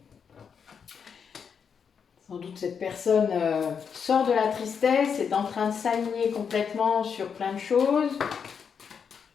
Sans doute cette personne sort de la tristesse, est en train de s'aligner complètement sur plein de choses.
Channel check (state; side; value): quieter; right; 6.7 dB